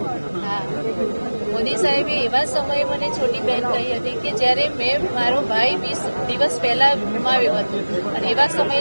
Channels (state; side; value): inverted; both; correlation -1.00